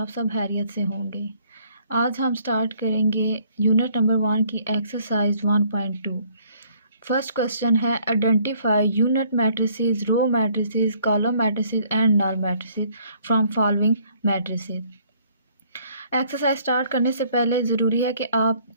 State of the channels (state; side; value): inverted; both; correlation -0.62